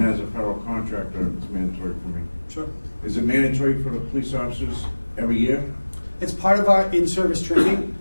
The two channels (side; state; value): both; inverted; correlation -1.00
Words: as a federal contractor, it's mandatory for me. Sure. Is it mandatory for the police officers every year? It's part of our in-service training.